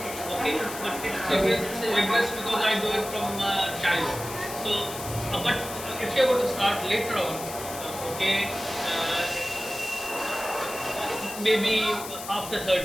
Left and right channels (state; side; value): noise; left; hiss, 10 dB below the sound